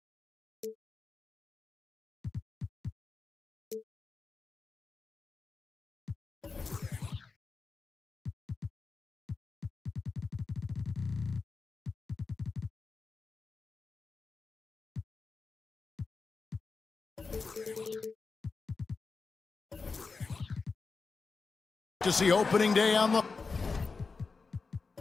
To see opening day on the...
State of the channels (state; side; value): quieter; right; 4.5 dB